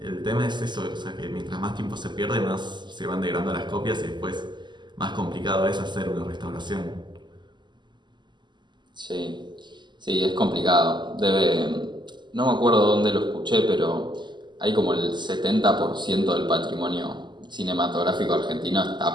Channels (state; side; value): late; left; 0.21 ms